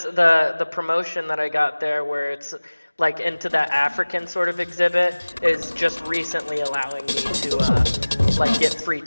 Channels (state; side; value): inverted; both; correlation -1.00